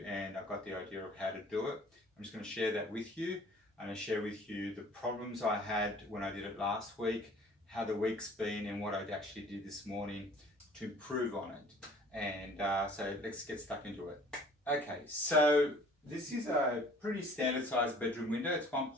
and I got the idea of how to do it. I'm just going to share that with you. I'm going to share with you the problems I had when I did it last week, how the week's been, and what I actually did this morning to improve on it. And so let's get stuck into it. Okay, so this is a pretty standard sized bedroom window. It's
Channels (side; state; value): both; normal; correlation 0.52